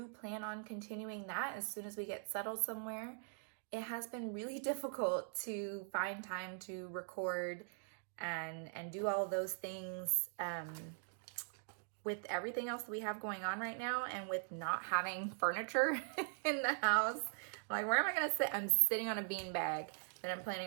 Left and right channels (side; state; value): left; silent; digital silence